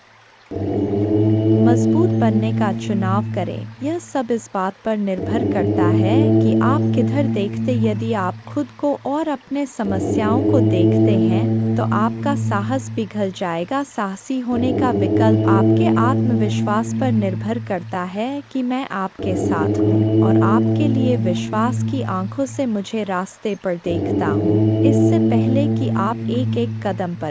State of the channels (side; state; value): both; identical; correlation 1.00